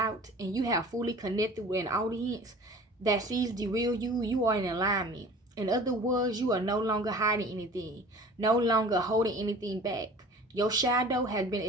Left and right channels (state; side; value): normal; both; correlation 0.43